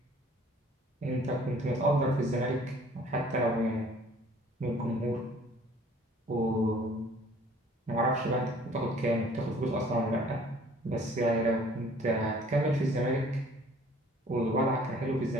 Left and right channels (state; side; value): normal; both; correlation 0.54